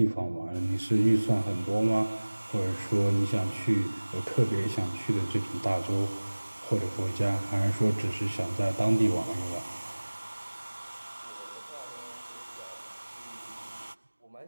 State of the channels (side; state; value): both; inverted; correlation -1.00